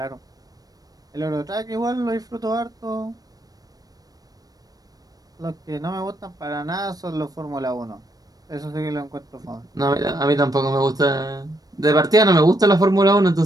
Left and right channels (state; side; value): late; left; 0.18 ms